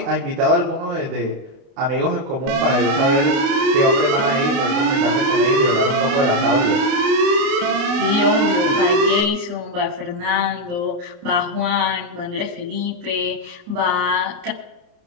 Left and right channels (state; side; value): late; left; 29 ms